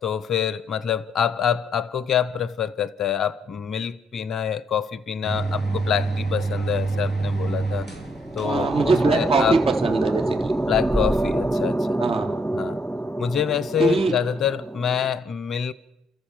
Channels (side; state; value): both; normal; correlation 0.71